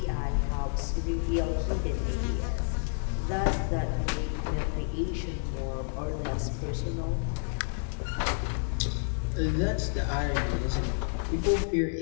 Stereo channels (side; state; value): right; silent; 56 dB below the other